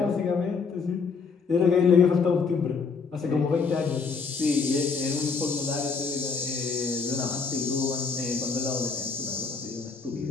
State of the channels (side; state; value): right; quieter; 5.0 dB